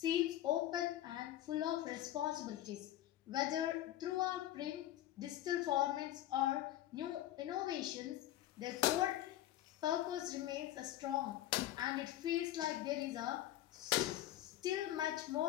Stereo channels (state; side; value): quieter; right; 13.7 dB